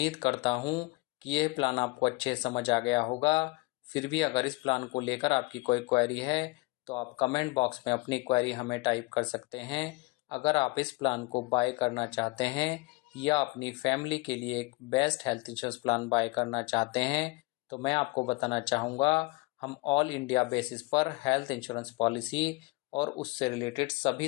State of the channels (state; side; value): quieter; right; 25.0 dB